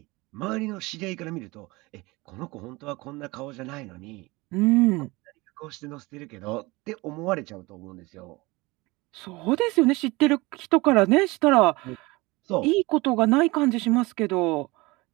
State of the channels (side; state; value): left; quieter; 22.9 dB